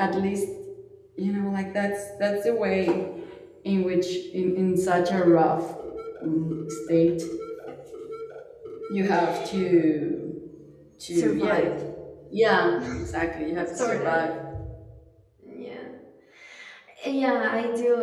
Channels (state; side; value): identical; both; correlation 1.00